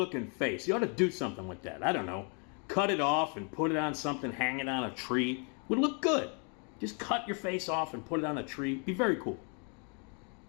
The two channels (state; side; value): quieter; right; 37.7 dB